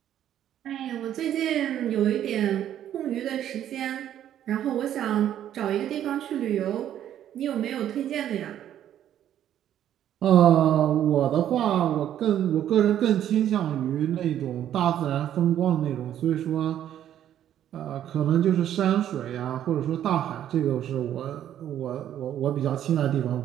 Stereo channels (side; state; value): left; quieter; 10.9 dB